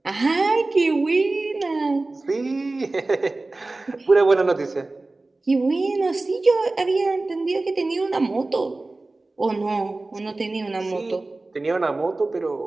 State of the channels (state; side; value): quieter; left; 3.2 dB